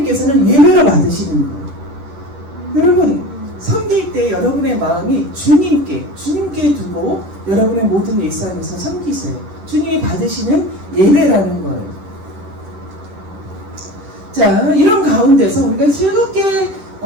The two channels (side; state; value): left; late; 10 ms